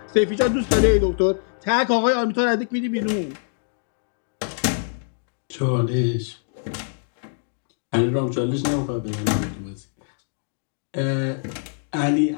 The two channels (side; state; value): right; silent; digital silence